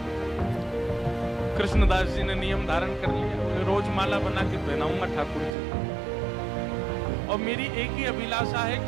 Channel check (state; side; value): drops out; left; at 5.6 s